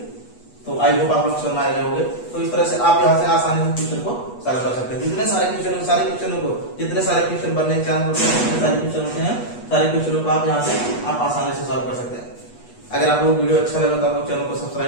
तो आई होप आप लोग समझ आए होंगे। तो इस तरह से आप यहाँ से आसानी से क्वेश्चन को सॉल्व कर सकते हैं। जितने सारे क्वेश्चन बनने के चांस होते हैं, जितने सारे क्वेश्चन होते हैं, सारे क्वेश्चनों को आप यहाँ से आप आसानी से सॉल्व कर सकते हैं। अगर आप लोग वीडियो अच्छा लगा तो आप लोग चैनल को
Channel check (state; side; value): late; right; 8.3 ms